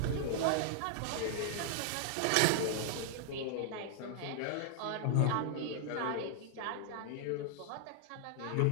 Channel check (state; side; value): different; both; correlation 0.00